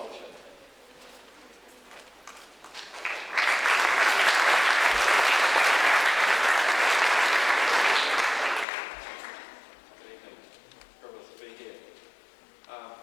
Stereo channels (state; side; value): drops out; right; at 8.7 s